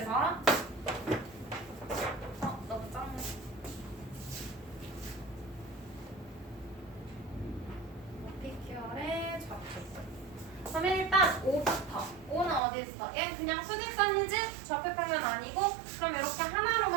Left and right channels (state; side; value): drops out; left; at 12.6 s